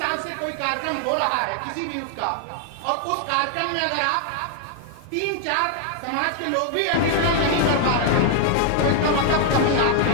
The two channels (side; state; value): both; different; correlation 0.00